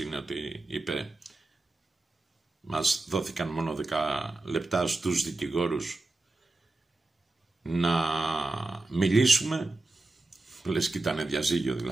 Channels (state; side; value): quieter; left; 3.1 dB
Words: είναι ότι είπε μας δόθηκαν μόνο 10 λεπτά στους δικηγόρους να μιλήσουμε. Λες και ήταν διαζύγιο,